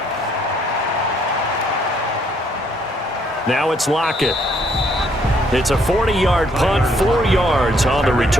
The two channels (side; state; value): both; normal; correlation 0.68